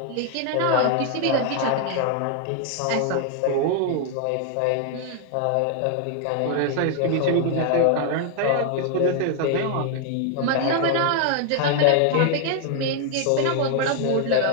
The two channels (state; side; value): different; both; correlation 0.00